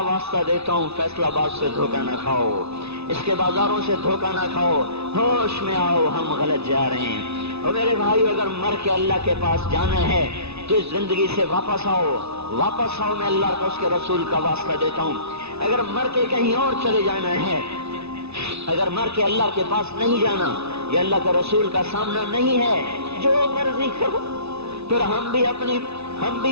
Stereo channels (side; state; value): left; late; 0.80 ms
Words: واسطہ دیتا ہوں فیصلہ باد سے دھوکہ نہ کھاؤ، اس کے بازاروں سے دھوکہ نہ کھاؤ، ہوش میں آؤ ہم غلط جا رہے ہیں۔ اور میرے بھائی اگر مر کے اللہ کے پاس جانا ہے تو اس زندگی سے واپس آؤ، واپس آؤ، میں اللہ کا اس کے رسول کا واسطہ دیتا ہوں۔ اگر مر کے کہیں اور چلے جانا ہے، اگر مر کے اللہ کے پاس نہیں جانا یا اللہ کے رسول کا سامنا نہیں ہے، جو مرضی کرو، پھر ہم